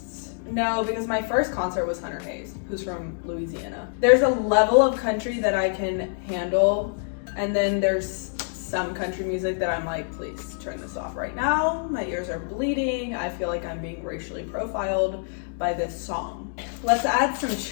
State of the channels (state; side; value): silent; right; digital silence